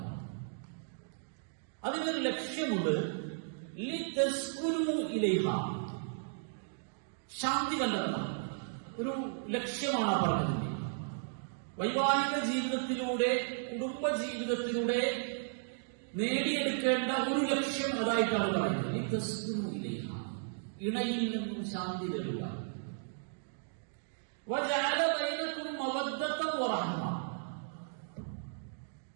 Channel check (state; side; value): silent; left; digital silence